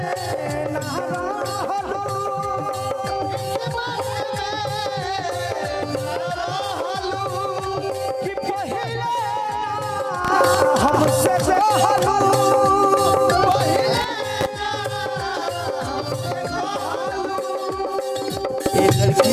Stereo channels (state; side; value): identical; both; correlation 1.00